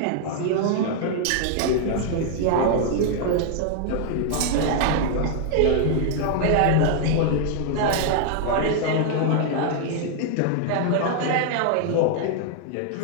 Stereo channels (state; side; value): different; both; correlation 0.00